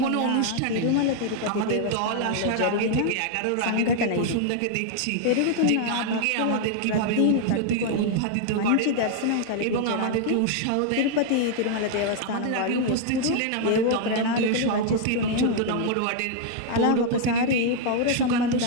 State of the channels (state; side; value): different; both; correlation 0.00